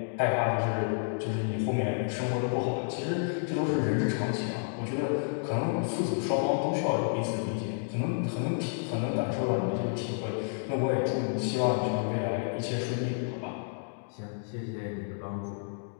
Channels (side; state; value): right; silent; digital silence